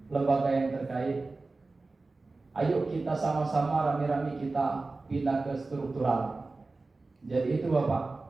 lembaga yang terkait, ayo kita sama-sama rame-rame kita pindah ke struktural. Jadi itu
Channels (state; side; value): quieter; left; 3.5 dB